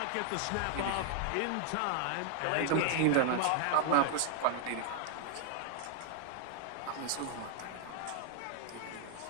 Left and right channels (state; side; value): different; both; correlation 0.00